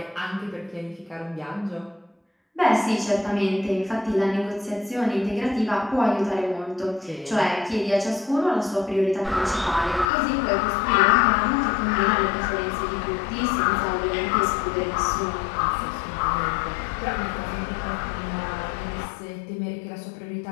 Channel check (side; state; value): right; drops out; at 10.1 s